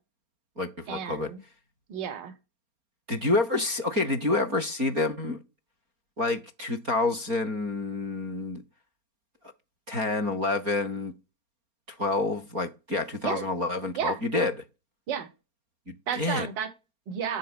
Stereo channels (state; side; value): late; left; 4.3 ms